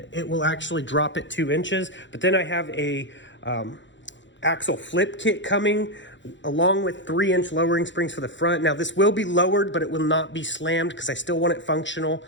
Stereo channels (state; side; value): late; right; 0.54 ms